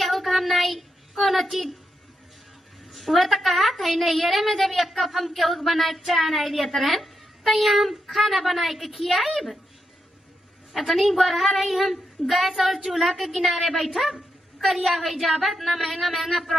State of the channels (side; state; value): both; normal; correlation 0.84